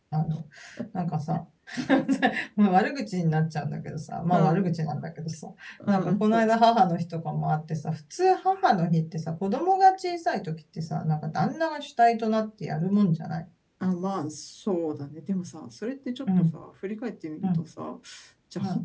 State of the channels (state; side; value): identical; both; correlation 1.00